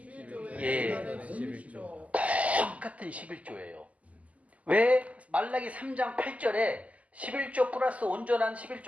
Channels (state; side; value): late; left; 0.070 ms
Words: 예. 다른 11조. 똑같은 11조예요. 왜 말라기 3장 8절에 11조 플러스 온전한